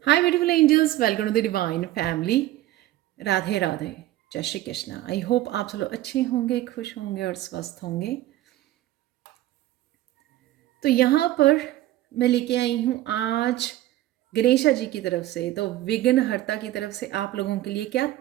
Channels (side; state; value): left; quieter; 15.2 dB